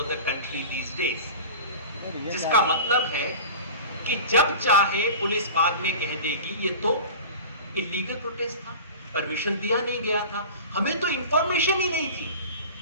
the country these days. जिसका मतलब है कि जब चाहे पुलिस बाद में कह देगी ये तो इलीगल प्रोटेस्ट था, परमिशन दिया नहीं गया था, हमें तो इंफॉर्मेशन ही नहीं थी।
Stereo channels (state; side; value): inverted; both; correlation -0.36